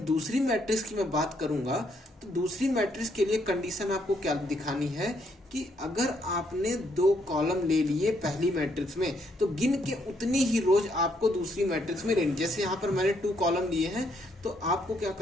दूसरी मैट्रिक्स की मैं बात करूंगा तो दूसरी मैट्रिक्स के लिए कंडीशन आपको क्या दिखानी है कि अगर आपने 2 कॉलम ले लिए पहली मैट्रिक्स में तो गिन के उतनी ही रोज आपको दूसरी मैट्रिक्स में लेनी। जैसे यहाँ पर मैंने 2 कॉलम लिए हैं तो आपको क्या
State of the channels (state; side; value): normal; both; correlation 0.73